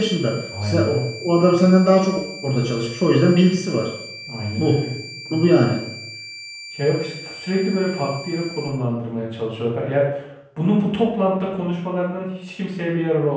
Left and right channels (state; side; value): identical; both; correlation 1.00